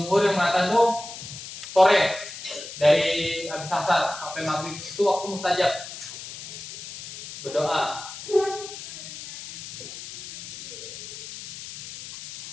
yang mengatakan tuh sore dari habis asar sampai maghrib itu waktu mustajab berdoa.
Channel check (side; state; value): left; noise; hiss, 12 dB below the sound